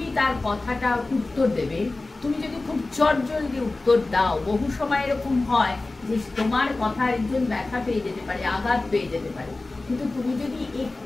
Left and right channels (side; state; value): right; quieter; 3.2 dB